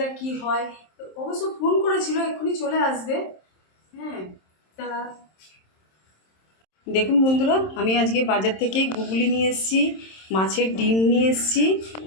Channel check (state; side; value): late; right; 27 ms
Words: কি হয়। অবশ্য ফোন করেছিল, এক্ষুনি চলে আসবে। হ্যাঁ, তা দেখুন বন্ধুরা, আমি আজকে বাজার থেকে গুগলি নিয়ে এসেছি, মাছের ডিম নিয়ে এসেছি।